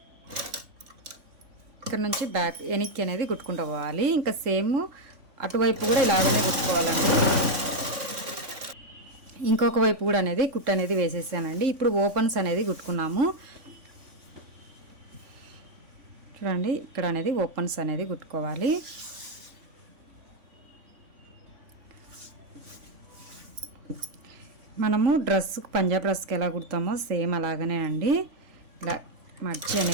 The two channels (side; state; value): left; late; 3.5 ms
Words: ఇక్కడ నుంచి బ్యాక్ వెనక్కి అనేది కుట్టుకుంటూ పోవాలి. ఇంకా సేమ్ అటువైపు కూడా ఇలాగనే కుట్టుకోవాలండి. ఇంకొక వైపు కూడా అనేది కుట్టు అనేది వేసేసానండి. ఇప్పుడు ఓపెన్స్ అనేది కుట్టుకున్నాము. చూడండి ఇక్కడ అనేది ఓపెన్స్ అనేది కుట్టుకోవాలి. మనము డ్రెస్కి పంజాబ్ డ్రెస్కి ఎలా కుడతామో సేమ్ అలాగనే అండి. ఇలా మర్చి